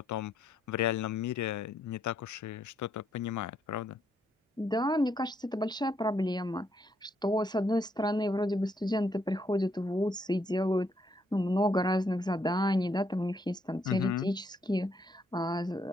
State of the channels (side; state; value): both; normal; correlation 0.73